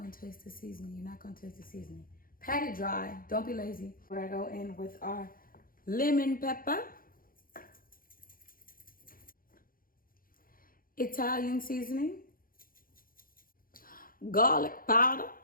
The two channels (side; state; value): right; late; 0.41 ms